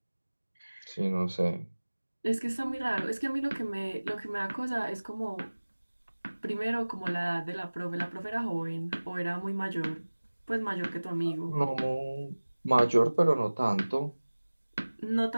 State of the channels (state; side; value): inverted; both; correlation -1.00